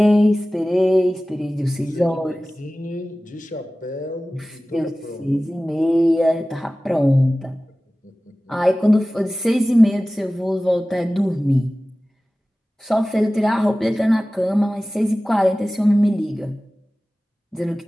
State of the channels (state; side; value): normal; both; correlation 0.97